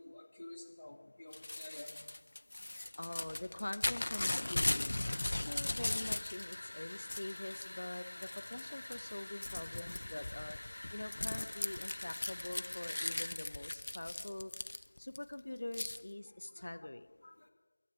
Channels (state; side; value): inverted; both; correlation -1.00